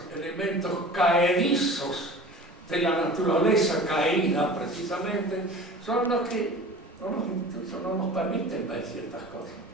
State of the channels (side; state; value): both; normal; correlation 0.40